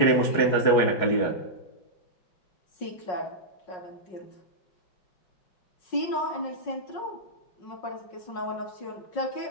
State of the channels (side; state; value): right; late; 5.5 ms